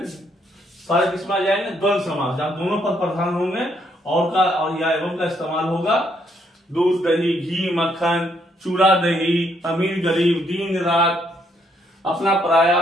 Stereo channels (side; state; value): both; normal; correlation 0.72